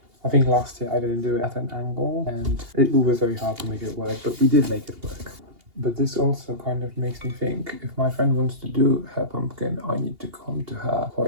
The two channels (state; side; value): late; left; 2.8 ms